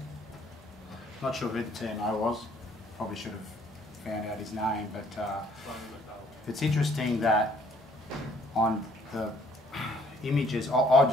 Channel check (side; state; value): both; normal; correlation 0.61